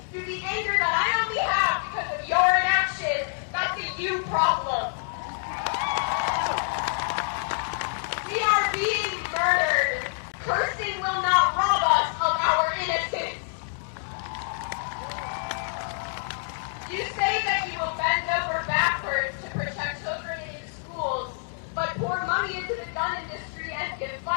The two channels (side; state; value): right; silent; digital silence